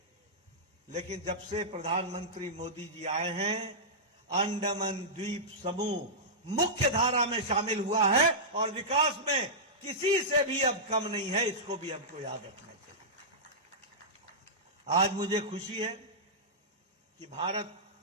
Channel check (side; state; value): both; normal; correlation -0.14